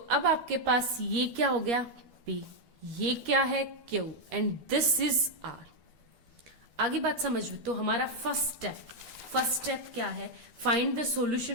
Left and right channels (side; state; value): left; late; 13 ms